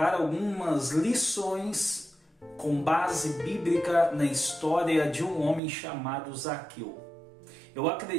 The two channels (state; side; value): drops out; left; at 5.6 s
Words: algumas lições com base bíblica na história de um homem chamado Zaqueu. Eu